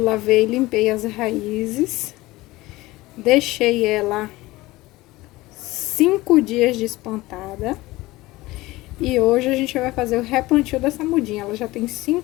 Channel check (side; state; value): right; quieter; 19.4 dB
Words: lavei, limpei as raízes, deixei ela 5 dias desplantada. E hoje a gente vai fazer o replantio dessa mudinha. Ela já tem